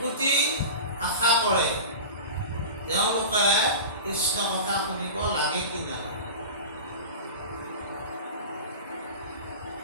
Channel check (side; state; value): both; inverted; correlation -0.31